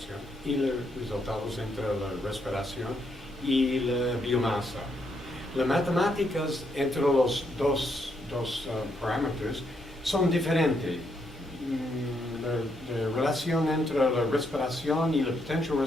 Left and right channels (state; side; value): normal; both; correlation 0.77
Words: y los resultados entre la respiración y la biomasa. Las matemáticas entre los dos parámetros son diferentes. La relación entre la respiración y la potential